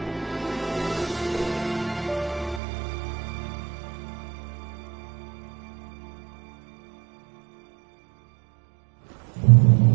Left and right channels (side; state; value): left; drops out; at 2.6 s